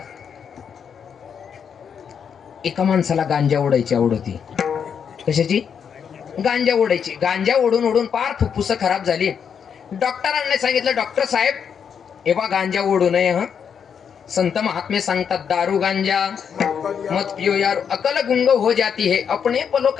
एका माणसाला गांजा ओढायची आवड होती. कशाची? गांजा ओढायची. गांजा ओढून ओढून पार फुफ्फुस खराब झाली. डॉक्टरांनी सांगितलं, डॉक्टर साहेब हे बा गांजा ओढू नये. हा, संत महात्मे सांगतात, दारू गांजा मत पियो यार, अकल गुंग हो जाती है, अपने पलो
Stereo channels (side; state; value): right; quieter; 7.3 dB